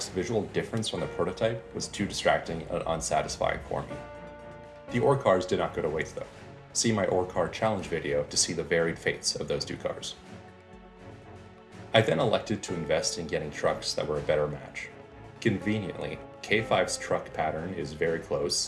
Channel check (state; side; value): identical; both; correlation 1.00